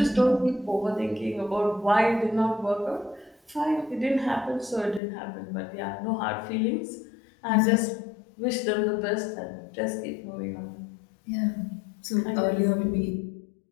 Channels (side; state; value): right; drops out; at 5.0 s